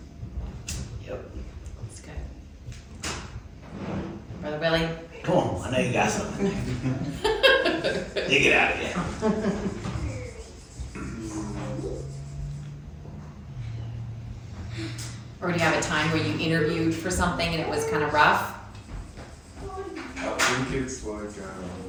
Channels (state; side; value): identical; both; correlation 1.00